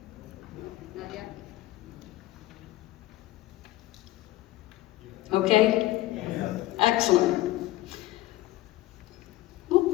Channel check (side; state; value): right; quieter; 16.4 dB